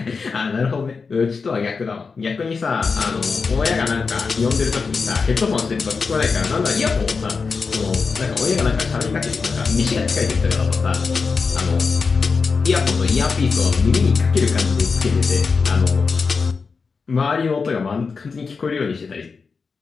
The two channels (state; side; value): quieter; right; 4.9 dB